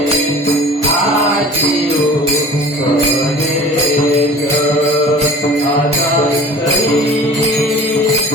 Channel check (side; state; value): both; normal; correlation 0.42